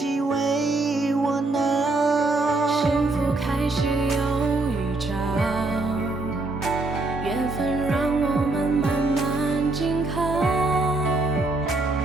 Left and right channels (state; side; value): quieter; left; 3.2 dB